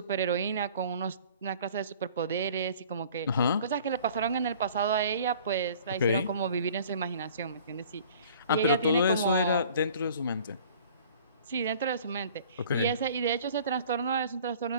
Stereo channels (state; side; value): inverted; both; correlation -0.50